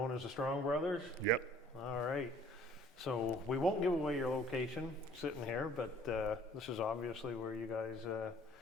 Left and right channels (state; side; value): normal; both; correlation 0.54